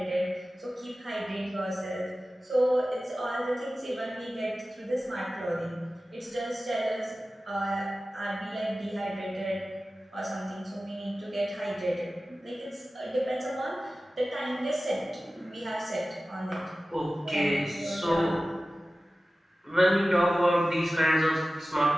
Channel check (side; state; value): both; normal; correlation 0.96